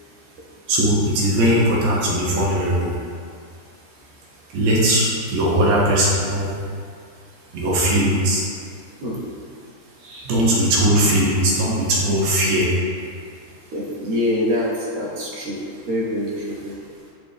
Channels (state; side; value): late; left; 14 ms